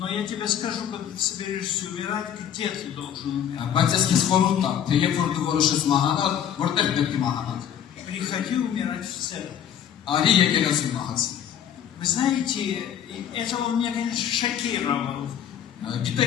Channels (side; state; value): right; quieter; 9.3 dB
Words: я тебе скажу, когда ты соберешься умирать, где ты должен умирать. Приходи умирать в церковь. Вы знаете, это он меня, конечно, шокировал.